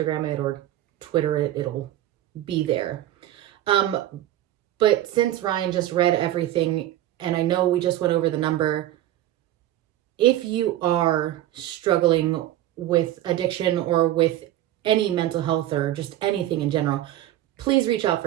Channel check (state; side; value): quieter; left; 13.7 dB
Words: it or Twitter it, it'll be there. But since Ryan just read everything, and I know we just went over the number, if you are struggling with addiction or with any mental health or just anything in general, please reach out